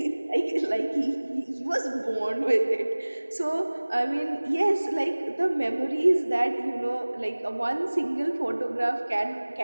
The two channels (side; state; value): both; inverted; correlation -1.00